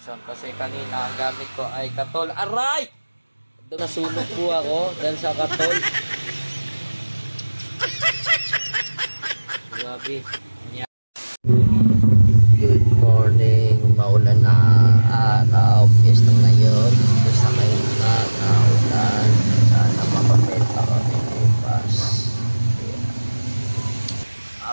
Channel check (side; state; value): both; inverted; correlation -1.00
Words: kasi kanina ang gamit ko ay katol. Aray! Nasunog po ako dahil sa katol. Grabe. Good morning. Maulan na araw. Piyesta ngayon. Basta ngayon na naulan. Sana makapenta kami bukas.